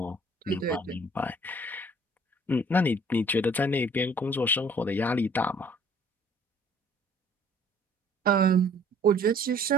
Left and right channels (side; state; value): both; normal; correlation 0.56